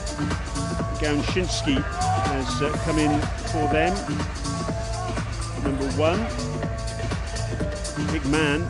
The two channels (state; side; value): identical; both; correlation 1.00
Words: Gałczyński has come in for them, number 1. Big man,